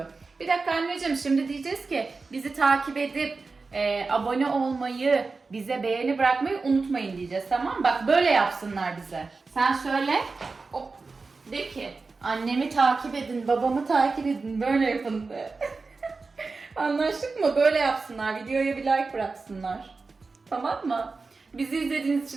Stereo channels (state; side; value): quieter; left; 4.1 dB